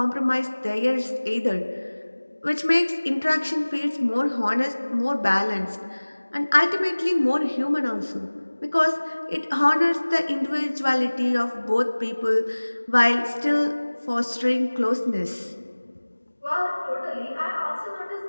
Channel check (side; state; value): both; inverted; correlation -1.00